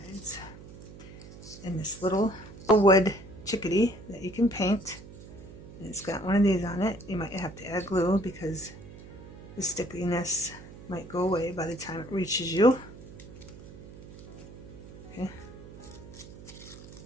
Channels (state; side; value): noise; right; hum, 16 dB below the sound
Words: And this little wood chickadee that you can paint, and it's got one of these on it. You might have to add glue because the stickiness might go away by the time it reaches you. Okay.